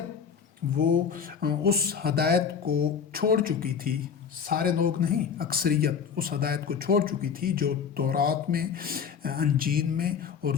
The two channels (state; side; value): quieter; right; 6.8 dB